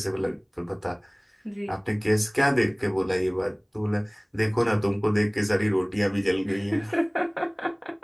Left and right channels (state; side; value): identical; both; correlation 1.00